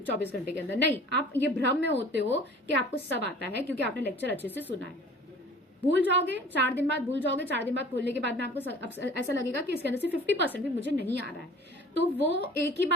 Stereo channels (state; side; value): normal; both; correlation 0.46